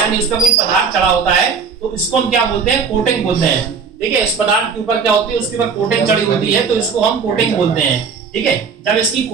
उस पर कोई पदार्थ चढ़ा होता है, तो इसको हम क्या बोलते हैं, कोटिंग बोलते हैं, ठीक है। इस पदार्थ के ऊपर क्या होती है, उसके ऊपर कोटिंग चढ़ी होती है, तो इसको हम कोटिंग बोलते हैं, ठीक है। जब इसकी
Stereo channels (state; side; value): quieter; left; 5.7 dB